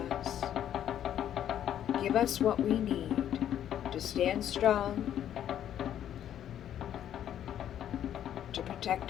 us. Give us what we need to stand strong, to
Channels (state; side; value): quieter; right; 10.5 dB